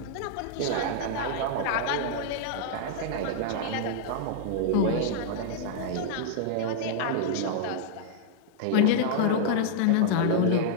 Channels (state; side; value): different; both; correlation -0.01